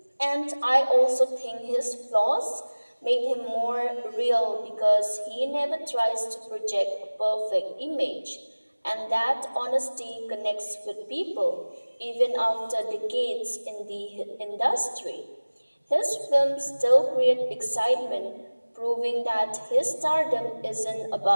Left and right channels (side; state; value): both; inverted; correlation -1.00